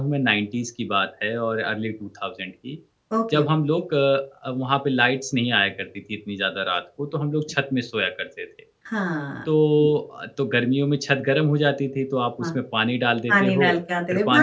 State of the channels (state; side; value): identical; both; correlation 1.00